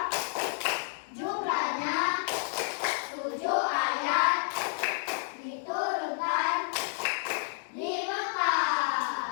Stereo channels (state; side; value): silent; right; digital silence